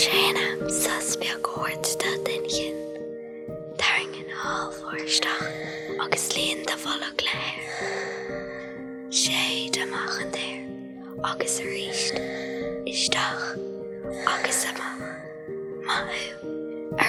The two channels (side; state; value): both; identical; correlation 1.00